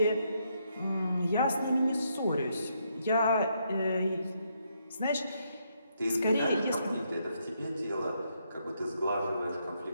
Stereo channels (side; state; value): both; inverted; correlation -0.76